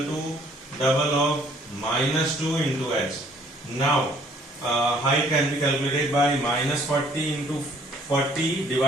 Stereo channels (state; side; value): normal; both; correlation 0.60